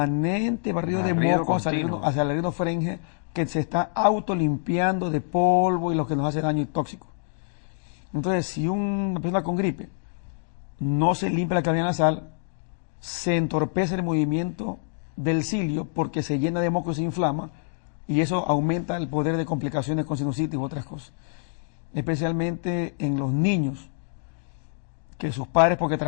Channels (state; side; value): silent; right; digital silence